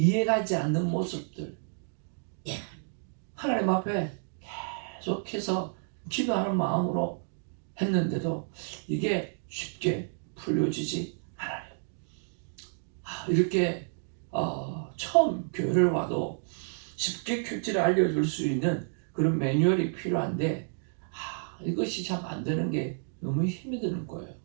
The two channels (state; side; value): silent; left; digital silence